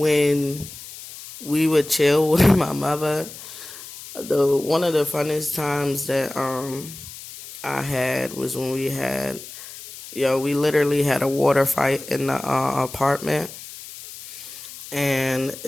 we would chill with my mother, the one of the funnest times that I had was when we literally had a water fight in the apartment. And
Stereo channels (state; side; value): noise; left; hiss, 14 dB below the sound